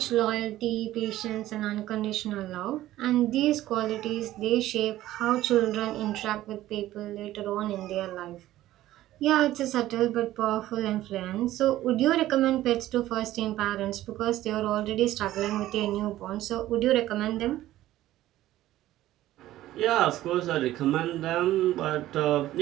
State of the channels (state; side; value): quieter; left; 14.7 dB